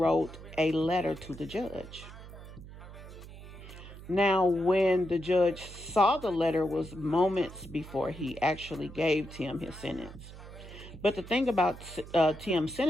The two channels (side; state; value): right; noise; hum, 15 dB below the sound